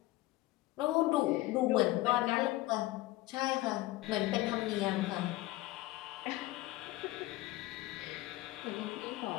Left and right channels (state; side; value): quieter; right; 18.2 dB